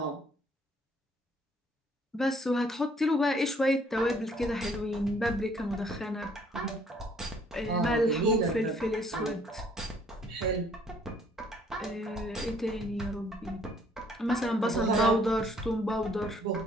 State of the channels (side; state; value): both; normal; correlation 0.62